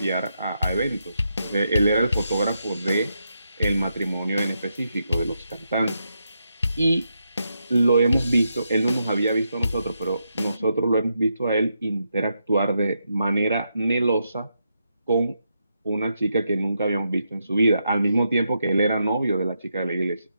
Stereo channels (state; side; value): inverted; both; correlation -0.83